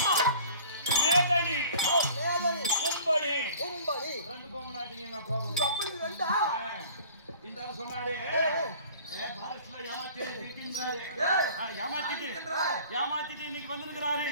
மேதனி, கும்படி, ரெண்டு பொங்கலாட்டிங்க எங்க அப்பா. இந்த ஆள் சொன்னாரு, பாரஸ்ல ஏமாத்திட்டு இன்னைக்கு வந்திருக்கிறாரு.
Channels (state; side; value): inverted; both; correlation -0.47